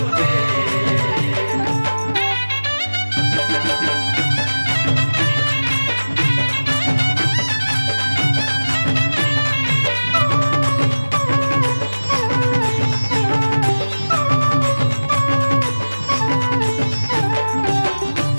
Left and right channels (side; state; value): both; inverted; correlation -1.00